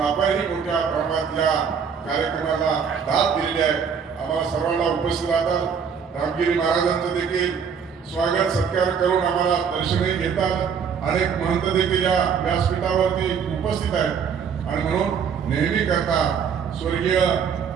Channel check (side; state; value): left; quieter; 6.8 dB